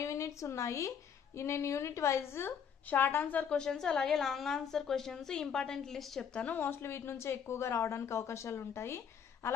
యూనిట్స్ ఉన్నాయి. నేను unit wise short answer questions అలాగే long answer questions important list చెప్తాను. మోస్ట్లీ వీటి నుంచి ఎక్కువగా రావడానికి అవకాశాలు ఉంటాయి.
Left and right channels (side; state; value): right; quieter; 7.5 dB